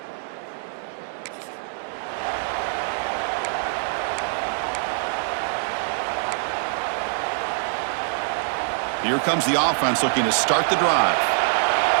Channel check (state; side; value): silent; left; digital silence